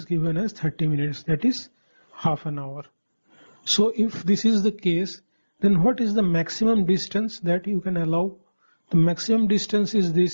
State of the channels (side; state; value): both; inverted; correlation -1.00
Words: given as 30 minutes, that is half an hour. So if this is the case, then what is the maximum distance that you can allow? The maximum distance is